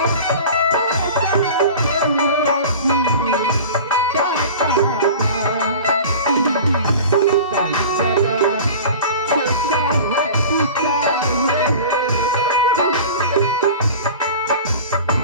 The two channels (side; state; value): both; inverted; correlation -0.37